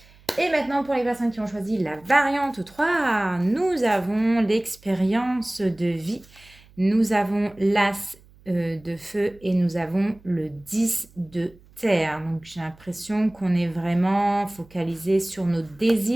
Et maintenant, pour les personnes qui ont choisi la variante 3, nous avons l'expérience de vie. Nous avons l'as de feu et nous avons le 10 de terre. Donc, j'ai l'impression qu'on est vraiment focalisé sur nos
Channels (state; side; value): noise; right; hum, 27 dB below the sound